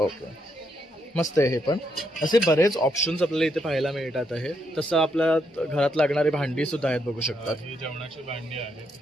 मस्त आहे. हे पण असे बरेच ऑप्शन्स आपल्याला इथे पाहायला मिळतात आहे. तसं आपल्या घरात लागणारी भांडी सुद्धा आहेत, बघू शकतात. ही जेवणाची भांडी आहेत.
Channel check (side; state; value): both; normal; correlation 0.77